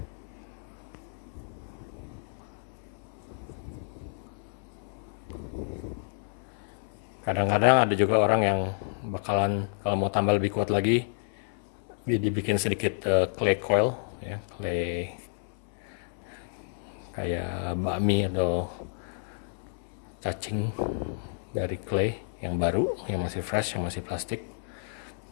Kadang-kadang ada juga orang yang bakalan kalau mau tambah lebih kuat lagi, dibikin sedikit clay coil, ya, clay kayak bakmi atau cacing dari clay yang baru, yang masih fresh, yang masih plastik,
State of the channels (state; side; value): silent; right; 58 dB below the other